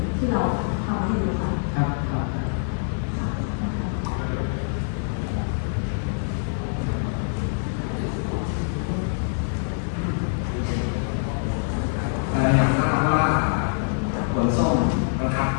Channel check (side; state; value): right; silent; digital silence